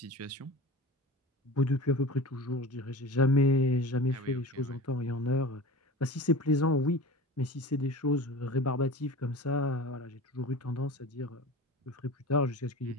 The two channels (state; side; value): normal; both; correlation 0.34